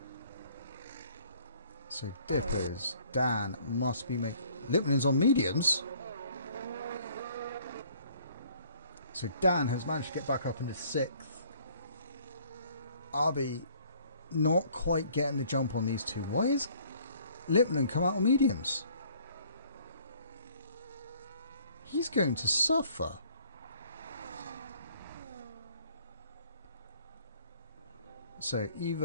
So Dippers, Dan must be making... Lipman's on mediums. So Dan has managed to get back up into 6th. Arby not quite getting the jump on these two. Why is Lipman come out on mediums? He's going to suffer. So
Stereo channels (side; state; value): both; inverted; correlation -0.58